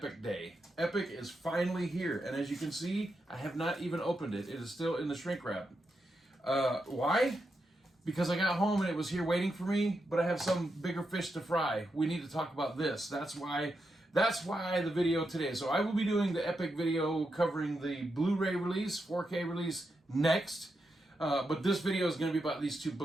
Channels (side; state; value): both; normal; correlation 0.85